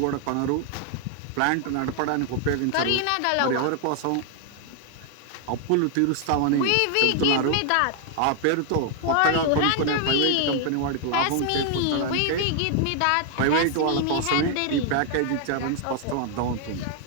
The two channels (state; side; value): different; both; correlation 0.00